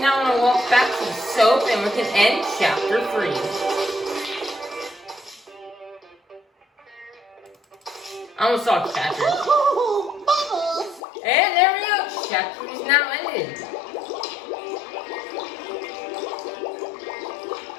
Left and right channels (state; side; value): drops out; right; at 11.0 s